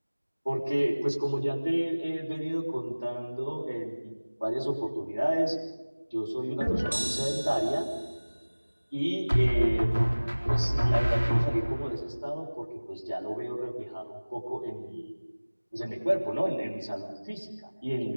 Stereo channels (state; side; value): inverted; both; correlation -1.00